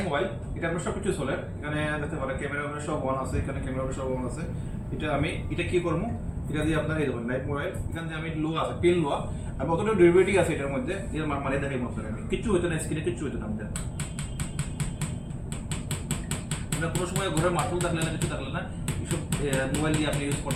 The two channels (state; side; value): identical; both; correlation 1.00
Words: মোবাইল, এটা আপনার সবকিছু চলে, এখানে দেখতে পারেন ক্যামেরা সব অন আছে, এখানে ক্যামেরা সব অন আছে। এটা কি করবো, এটা দিয়ে আপনার এই দেখুন লাইভ মোবাইল, এখান থেকে আমি লোয়া আছে পিন লোয়া, আর কতটা ডিউরেবিলিটি আছে এটার মধ্যে, এর মানে দেখাই মতো আমি কিচ্ছু হইতো না, স্ক্রিনে কিচ্ছু হইতো না আমাদের। কোনো সময় ঘরে মাঠও থাকলে না, কিছু থাকলে না, এইসব মোবাইল দিয়ে আপনি ইউজ